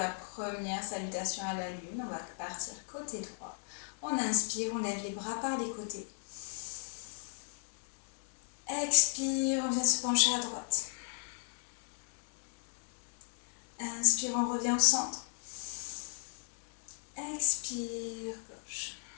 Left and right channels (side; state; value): right; silent; digital silence